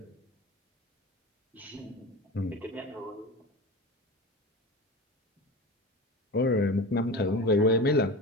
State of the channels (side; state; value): both; normal; correlation 0.30